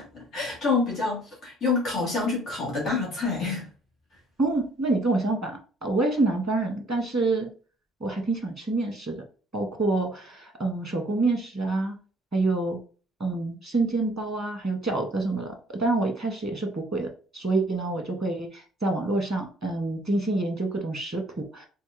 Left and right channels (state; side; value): normal; both; correlation 0.60